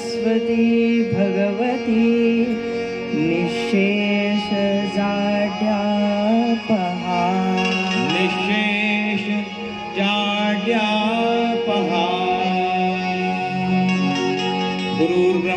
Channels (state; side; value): identical; both; correlation 1.00